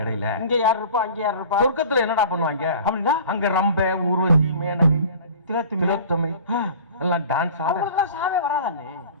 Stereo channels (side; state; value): both; inverted; correlation -0.42